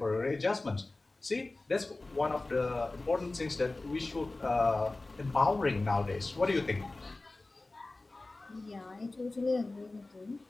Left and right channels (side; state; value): right; quieter; 3.1 dB